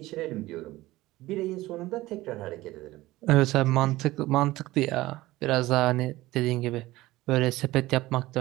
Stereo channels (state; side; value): quieter; left; 18.0 dB